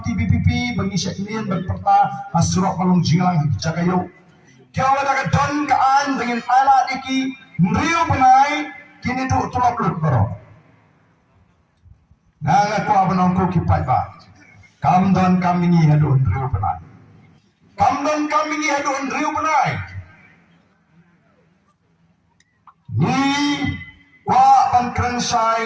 BPP mengisyak ini berperta hasurok malung jinglang jagayo. Kau ada don kaan dengan alat iki meriu penai kini tu tulak lut bro. Nang aku abanongko kipai ba. Kam don kami ni hadun meriu penai. Kam don kami ni hadun meriu penai. Ni wa ban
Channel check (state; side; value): identical; both; correlation 1.00